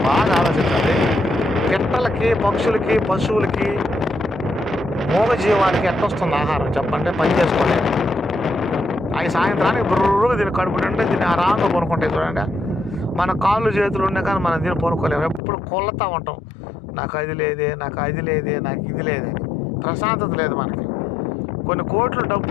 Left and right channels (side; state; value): right; drops out; at 15.4 s